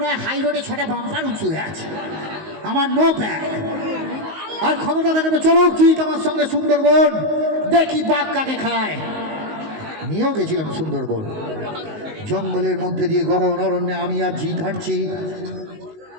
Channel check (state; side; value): late; left; 19 ms